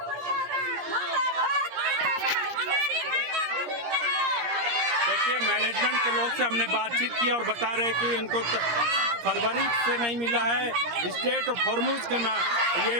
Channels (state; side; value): late; left; 17 ms